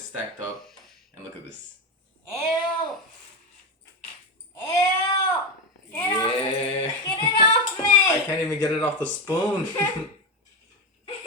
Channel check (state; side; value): normal; both; correlation 0.13